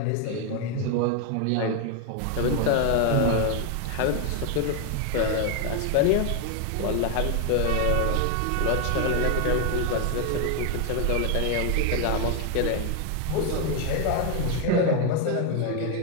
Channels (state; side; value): different; both; correlation 0.01